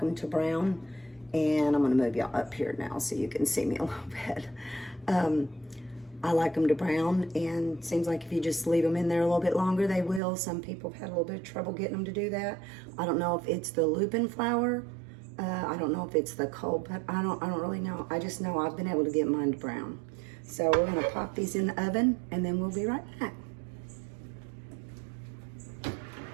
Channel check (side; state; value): left; drops out; at 10.2 s